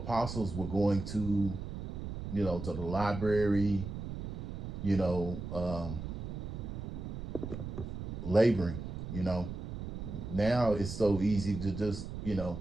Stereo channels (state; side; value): noise; right; rumble, 7 dB below the sound